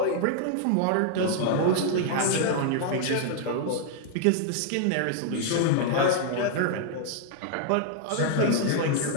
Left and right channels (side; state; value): both; different; correlation 0.00